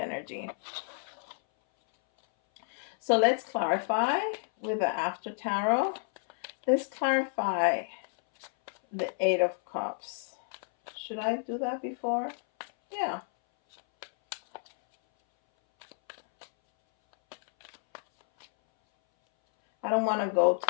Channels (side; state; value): right; silent; 58 dB below the other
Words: So let's clarify with the after tarot. Let's clarify the Eight of Cups. Should I do that before? Yeah. I don't want to go